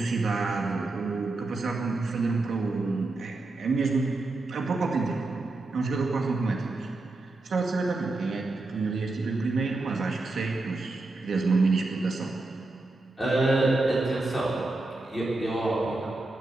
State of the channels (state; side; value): quieter; left; 3.1 dB